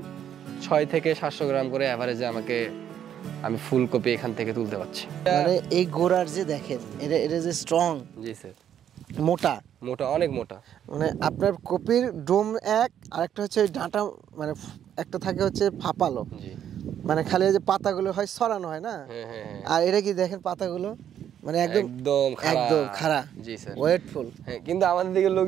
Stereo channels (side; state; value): left; quieter; 9.8 dB